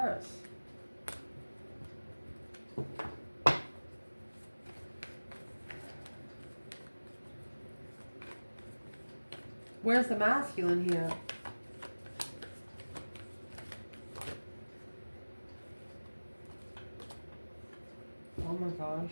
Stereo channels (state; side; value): inverted; both; correlation -1.00